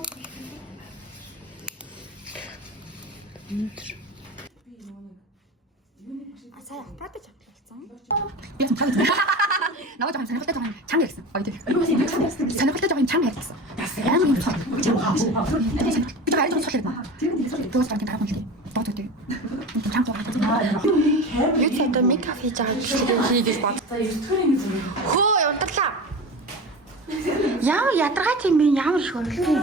Сая аппарат авчихсан. Би ч таа. Наваа жоохон сонирхолтой жоохон чанга гэсэн. Сонирхолтой жоохон чанга ярьсан. Яа юм бэ? Би гараад ирж байна. Дөөс гараад гарах юм. Бод үгүй. Чанга жоохон. Юу ч одоо мейкап хийж байгаа гэсэн хийгээс бод. Хөө явдарлаа. Ямар ядаргаа тийм бэ? Ямар их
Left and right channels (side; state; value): both; normal; correlation 0.30